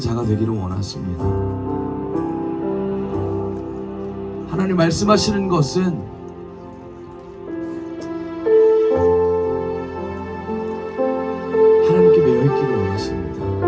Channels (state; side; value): identical; both; correlation 1.00